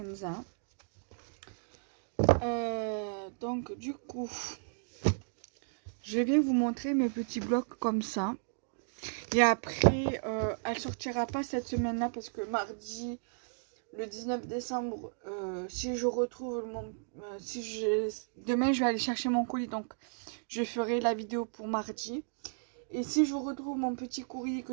Donc du coup, je vais vous montrer mes petits blocs comme ça. Et après, elle sortira pas cette semaine-là parce que mardi, le 19 décembre, si je retrouve demain je vais aller chercher mon colis, donc je ferai la vidéo pour mardi. Et si je retrouve mon petit courrier que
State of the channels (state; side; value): silent; left; digital silence